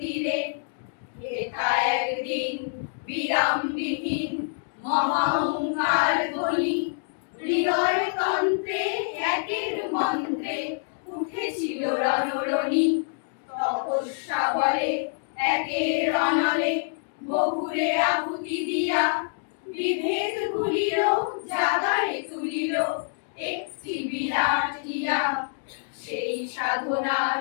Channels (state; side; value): silent; right; digital silence